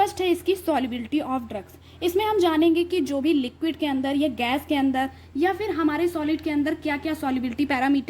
है इसकी सॉल्युबिलिटी ऑफ ड्रग्स। इसमें हम जानेंगे कि जो भी लिक्विड के अंदर या गैस के अंदर या फिर हमारे सॉलिड के अंदर क्या क्या सॉल्युबिलिटी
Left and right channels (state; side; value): identical; both; correlation 1.00